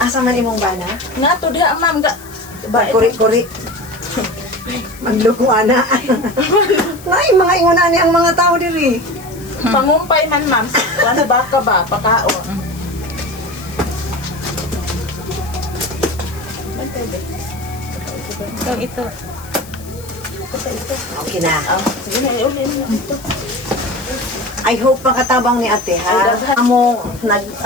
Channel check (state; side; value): noise; left; hiss, 20 dB below the sound